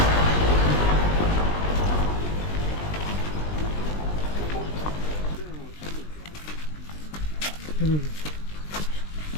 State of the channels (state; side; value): late; right; 20 ms